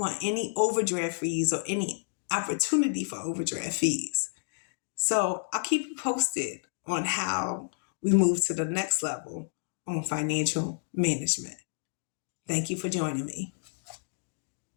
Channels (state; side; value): silent; right; digital silence